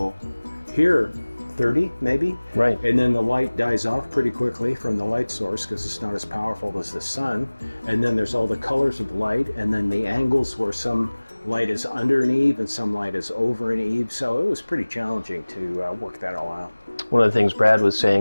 here, 30 maybe, right, and then the light dies off pretty quickly from the light source because it's not as powerful as the sun, and then there's all the colors of light, and then the angles where some light is under an eave and some light is over an eave. So it was pretty challenging to work that all out. One of the things Brad was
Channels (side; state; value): both; inverted; correlation -1.00